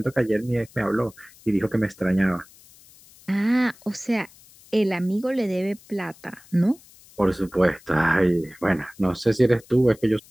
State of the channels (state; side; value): noise; left; hiss, 25 dB below the sound